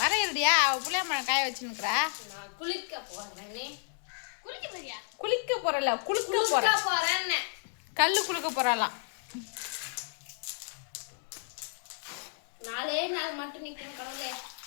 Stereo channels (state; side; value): silent; right; 57 dB below the other